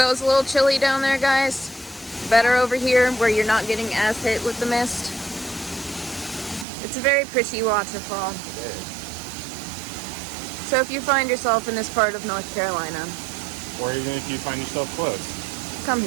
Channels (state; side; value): drops out; left; at 6.7 s